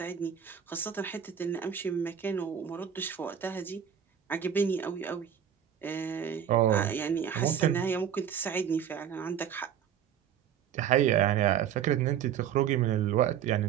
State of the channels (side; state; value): left; quieter; 8.9 dB